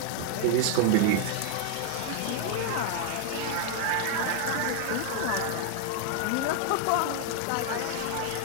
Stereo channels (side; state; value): both; different; correlation 0.00